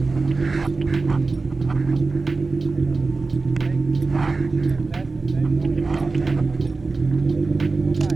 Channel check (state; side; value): quieter; left; 3.8 dB